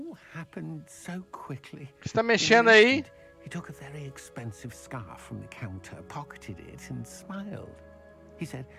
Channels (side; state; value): both; identical; correlation 1.00